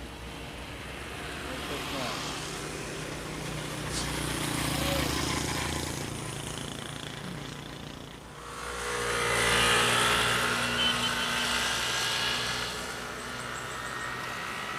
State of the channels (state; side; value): identical; both; correlation 1.00